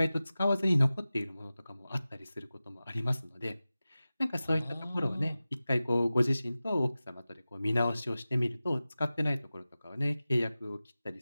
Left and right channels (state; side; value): inverted; both; correlation -0.96